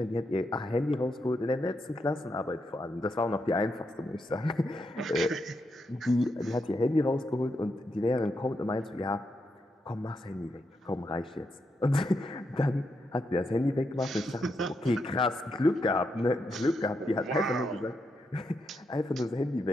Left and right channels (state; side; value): normal; both; correlation 0.82